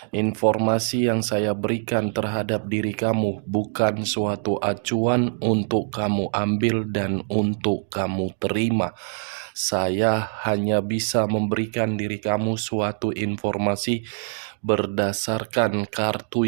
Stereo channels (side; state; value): left; silent; digital silence